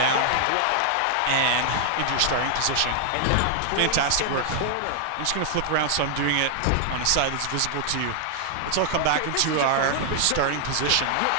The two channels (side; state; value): both; different; correlation 0.00